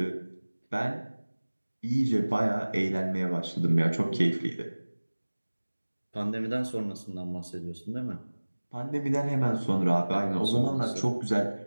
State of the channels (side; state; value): both; inverted; correlation -1.00